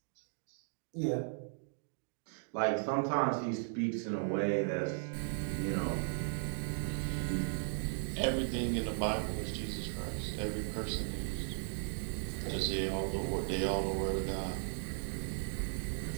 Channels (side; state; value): left; silent; digital silence